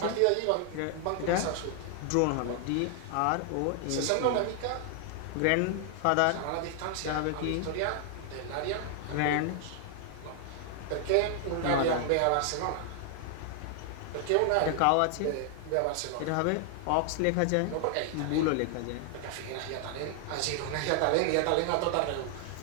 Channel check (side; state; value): both; different; correlation 0.00